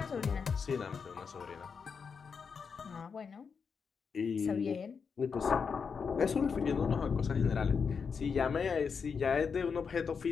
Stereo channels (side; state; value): right; quieter; 5.9 dB